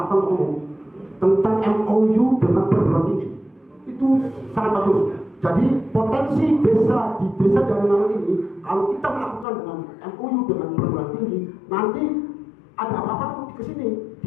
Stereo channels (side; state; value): right; drops out; at 9.5 s